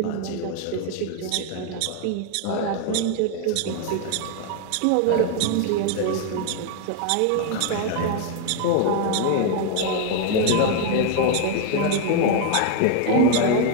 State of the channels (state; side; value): different; both; correlation 0.00